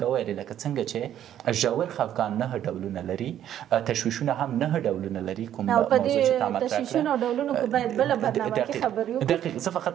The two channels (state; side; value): quieter; left; 10.9 dB